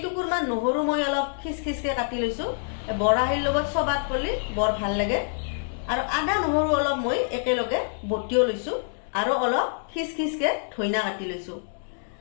নহৰু মই অলপ খিচখিচকে কাটি লৈছো বৰাহিৰ লগত সবাত কৰিলে বৰ ভাল লাগে আৰু আদা নহৰু অলপ মই একেলগে বটিও লৈছো আৰু অলপ খিচখিচকে ধইনা কাটি লৈছো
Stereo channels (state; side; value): silent; right; digital silence